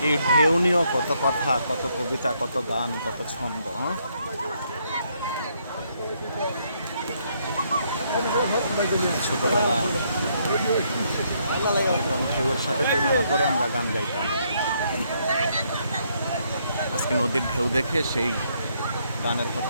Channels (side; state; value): both; inverted; correlation -0.73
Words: এই ঢেউ নিয়েও কত কথা, কত কবিতা, কত গান, কত ছন্দ। ছোটবেলা একদম ঢেউয়ের সাথে তুলনা করে আমরা গান গাইতাম। আজকে নদীর ঢেউ দেখে সেই গানের